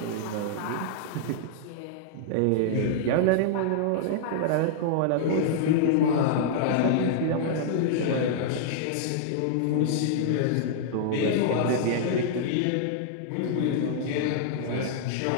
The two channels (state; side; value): different; both; correlation -0.01